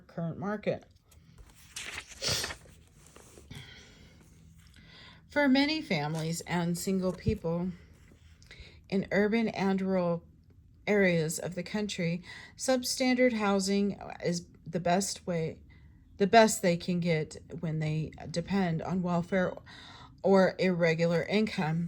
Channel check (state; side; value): identical; both; correlation 1.00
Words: current market. For many families and single people in urban and rural areas of the country, substandard housing is the best they can get when they depend on welfare or irregular